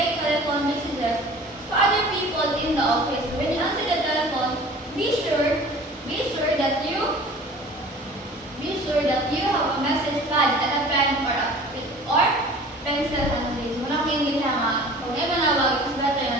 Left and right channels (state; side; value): normal; both; correlation 0.45